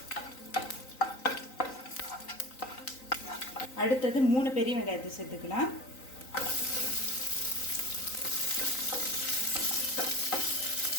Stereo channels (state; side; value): late; right; 3.9 ms